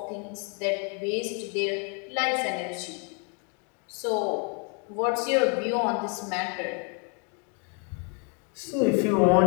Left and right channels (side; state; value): right; quieter; 37.8 dB